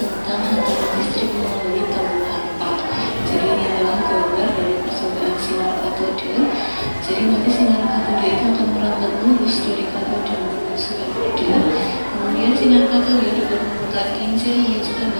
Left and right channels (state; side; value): inverted; both; correlation -1.00